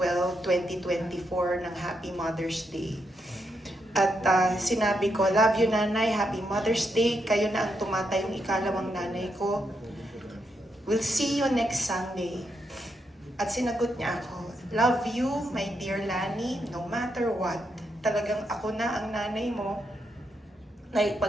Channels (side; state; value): both; normal; correlation 0.81